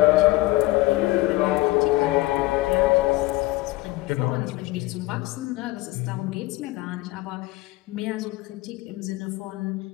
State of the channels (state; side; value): quieter; right; 19.7 dB